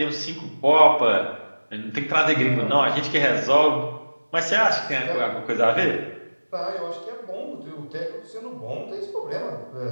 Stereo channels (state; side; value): inverted; both; correlation -1.00